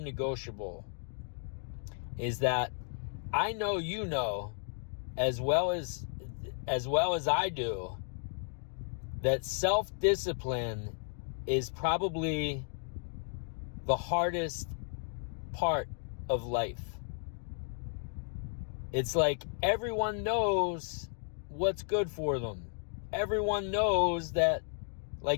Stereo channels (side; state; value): right; silent; 55 dB below the other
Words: is that I know you know as well as I do that self-discipline is probably the hardest part of life. It's like everyone knows what's good for them. Everyone knows that,